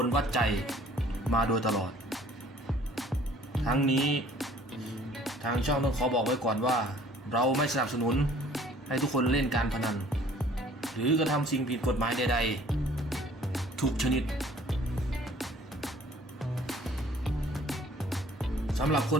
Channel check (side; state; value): both; normal; correlation 0.54